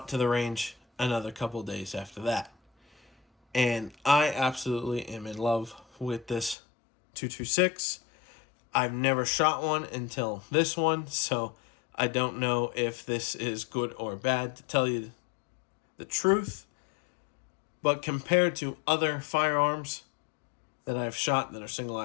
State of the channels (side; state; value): right; drops out; at 6.6 s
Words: to the range another couple days after that. And I absolutely am in love with this 226. I've never shot one until this one, so I don't know if this is good or bad, to tell you the truth. But compared to other firearms that I've shot that are single